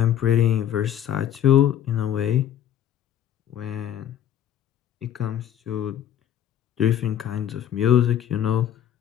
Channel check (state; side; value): quieter; right; 10.3 dB